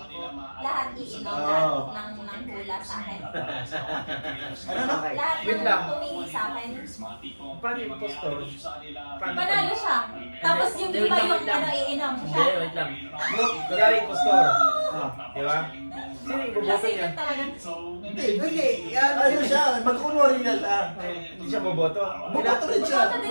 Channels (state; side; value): inverted; both; correlation -1.00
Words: ko, lahat iinom, Oo. lahat ng hula sa akin. Ano na? Lahat Wait ng lang. tumingin sa akin. Paano yung postor? Panalo siya. Tapos yung iba yung ano, iinom siya. Hindi, wait lang. Kunwari yung postor. Di ba? Sino yung boboto Kasi niya? yun talagang Hindi. Ano siya? Magkunwari na siya. Hindi siya boboto. Buboto rin siya. Boboto